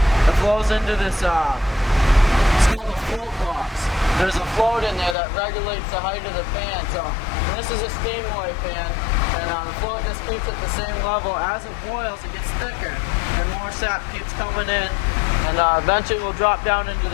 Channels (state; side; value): drops out; right; at 5.2 s